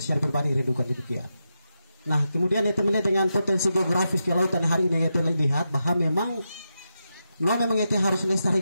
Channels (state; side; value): inverted; both; correlation -0.87